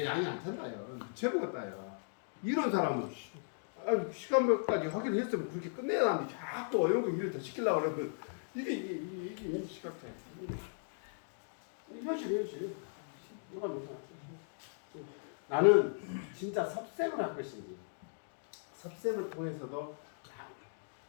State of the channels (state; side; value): silent; right; digital silence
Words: 양이 안 찬다요. 미쳐버렸다요. 이런 사람은 시간 몇 가지 하기로 했으면 그렇게 끝내야 하는데 자꾸 이런 거 일을 더 시키려고 그러면 이게 시간 차. 현실. 나는 진짜 섭생을 할 것인지 섭생을 통해서도